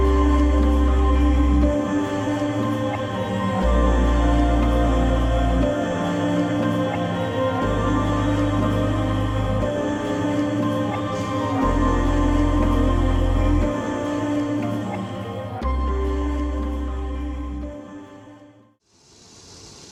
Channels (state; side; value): identical; both; correlation 1.00